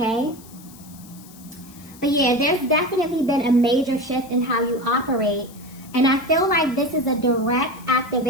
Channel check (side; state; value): left; noise; hiss, 22 dB below the sound